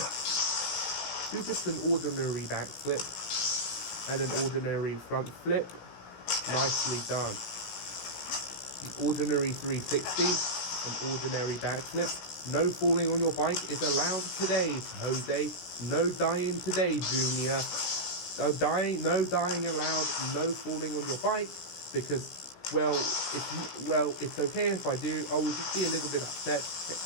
Do just an ordinary backflip and an ordinary front flip. Nicely done. An ordinary 360, an ordinary backflip. No falling on your bike is allowed today, Jose. No dying today, Junior. No dying allowed. No falling on your bike, because it's okay if I do. I will just be a little bit upset.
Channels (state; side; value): late; right; 16 ms